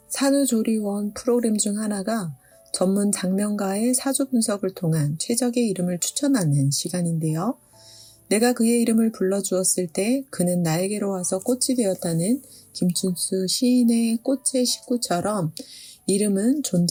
산후조리원 프로그램 중 하나가 전문 장면가의 사주 분석을 통한 최적의 이름을 추천하는 시간인데요. 내가 그의 이름을 불러주었을 때 그는 나에게로 와서 꽃이 되었다는 김춘수 시인의 꽃의 식구처럼 이름은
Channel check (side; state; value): both; identical; correlation 1.00